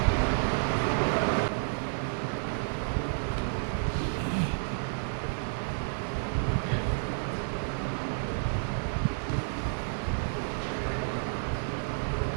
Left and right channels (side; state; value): left; silent; digital silence